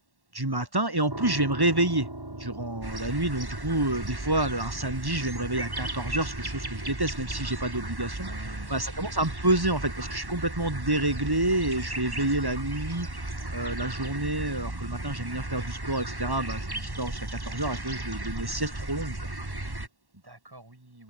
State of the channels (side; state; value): left; late; 1.1 ms